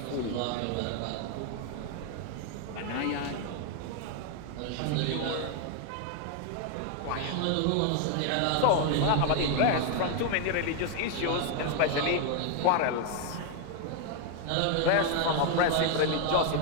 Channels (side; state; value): both; different; correlation 0.00